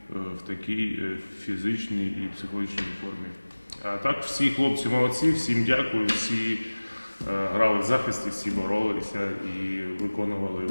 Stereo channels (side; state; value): both; inverted; correlation -1.00